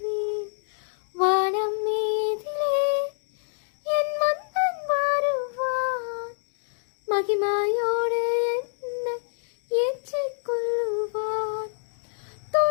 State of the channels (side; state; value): right; silent; digital silence